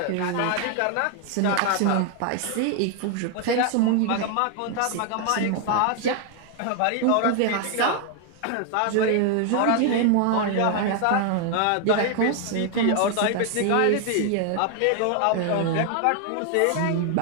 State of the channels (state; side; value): different; both; correlation 0.00